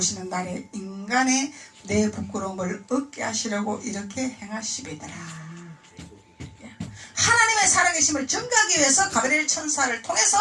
날에 인간의 내 부끄러움을 얻게 하시려고 이렇게 행하시리더라. 하나님의 살아계심을 증거하기 위해서 가브리엘 천사를 통해서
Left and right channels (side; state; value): both; identical; correlation 1.00